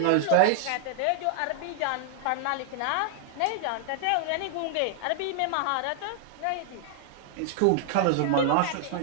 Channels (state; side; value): different; both; correlation -0.01